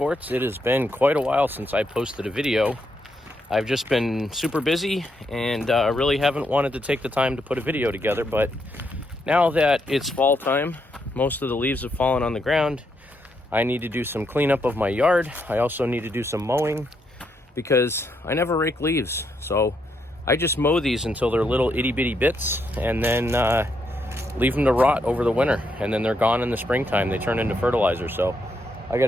It has been quite a while since I posted a video. I've just been super busy and really haven't wanted to take the time to put a video together, but now that it's fall time, most of the leaves have fallen on the ground. I need to do some cleanup of my yard. I also need to do some mowing because I never rake leaves. So I just mow these until they're little itty bitty bits and then leave them to rot over the winter, and then they're gone in the springtime. They turn into fertilizer. So I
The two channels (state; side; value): normal; both; correlation 0.78